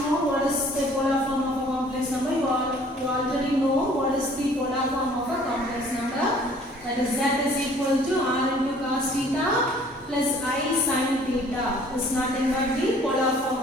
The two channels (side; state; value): both; normal; correlation 0.55